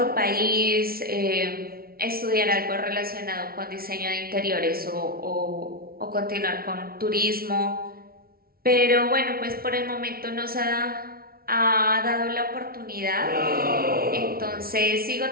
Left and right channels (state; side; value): late; left; 0.44 ms